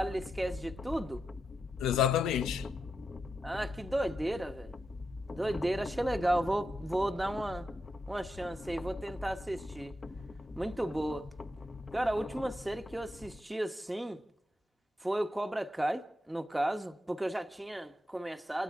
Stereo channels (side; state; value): both; normal; correlation 0.86